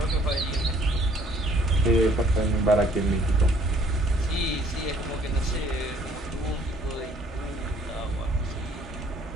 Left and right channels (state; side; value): normal; both; correlation 0.60